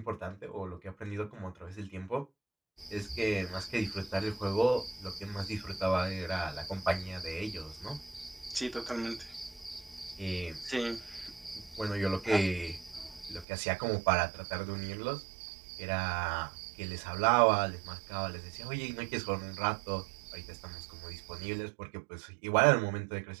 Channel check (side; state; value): left; drops out; at 13.5 s